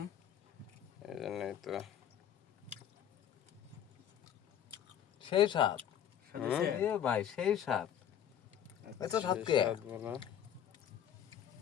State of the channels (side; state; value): right; quieter; 9.7 dB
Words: এই জন্যই তো। সেই স্বাদ সাথে এ ভাই, সেই স্বাদ। এত স্বাদ কে? স্বাদ বলা।